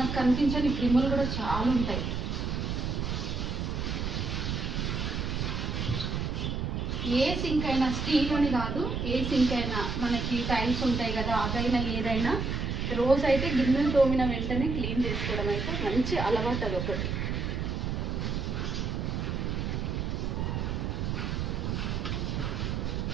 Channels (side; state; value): right; noise; rumble, 1 dB below the sound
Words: కనిపించని క్రిములు కూడా చాలా ఉంటాయి. ఏ సింక్ అయినా, స్టీల్ అని కాదు, ఏ సింక్ అయినా మనకి టైల్స్ ఉంటాయి కదా, అదైనా ఏదైనా రోజు అయితే గిన్నెలు తోమిన వెంటనే క్లీన్ చేసుకోవడం అయితే మంచి అలవాటు. అది ఒకటి.